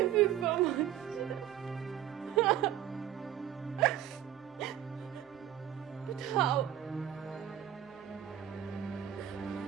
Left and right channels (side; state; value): left; quieter; 11.1 dB